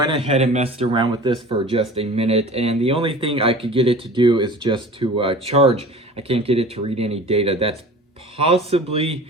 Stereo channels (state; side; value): normal; both; correlation 0.41